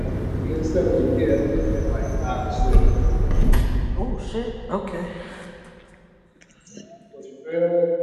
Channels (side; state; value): both; identical; correlation 1.00